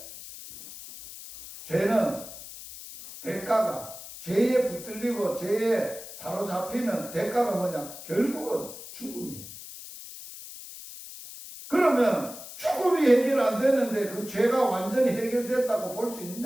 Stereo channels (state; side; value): noise; left; hiss, 13 dB below the sound